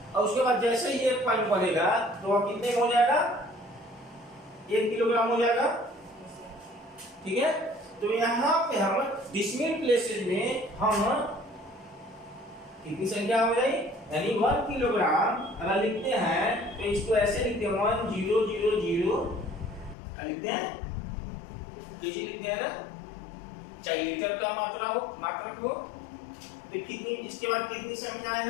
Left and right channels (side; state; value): right; drops out; at 20.0 s